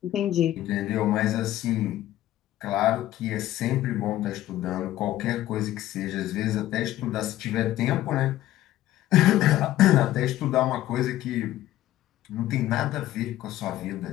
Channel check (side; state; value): right; quieter; 14.3 dB